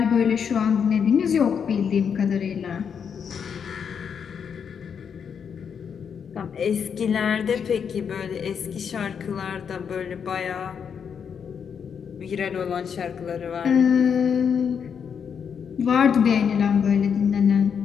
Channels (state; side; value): quieter; right; 7.1 dB